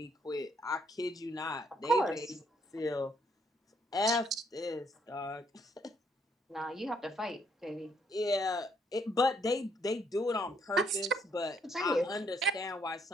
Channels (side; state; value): both; normal; correlation 0.70